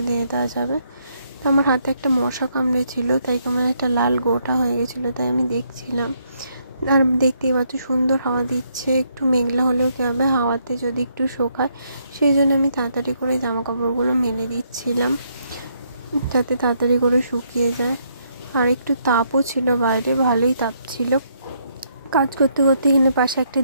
দিয়ে দেওয়া যাবে। তো আমার হাতে একটা মশা কামড়েছিল, তাই কেমন একটা লাল গোটা হয়ে গেছিলো, তাই আমি দেখছিলাম। আর দেখতেই পাচ্ছ সুন্দর হাওয়া দিচ্ছে। একটু মেঘলা হলেও কী হবে, হাওয়াতে যদি একটু শোকায়, সেই জন্য আমি তাড়াতাড়ি করে জামা কাপড়গুলো মেলে দিচ্ছিলাম, যাতে তাড়াতাড়ি করে শুকিয়ে যায়। আর একটু তাপও ছিল বাইরে, ভালোই তাপ ছিল। কাজ করতে করতে এখানে পাশে একটা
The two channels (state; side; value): inverted; both; correlation -0.73